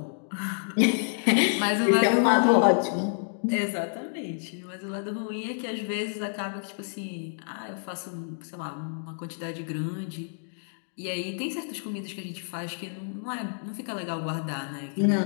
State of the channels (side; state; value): right; silent; digital silence